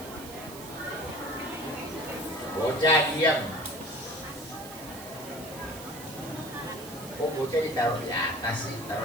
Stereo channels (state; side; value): noise; right; hiss, 14 dB below the sound